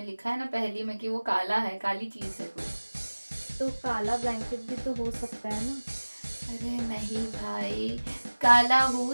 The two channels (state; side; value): inverted; both; correlation -1.00